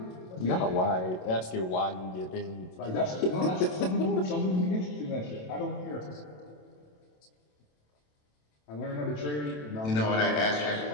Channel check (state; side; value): late; right; 27 ms